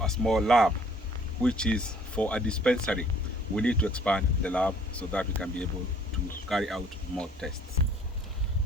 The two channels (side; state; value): both; normal; correlation 0.57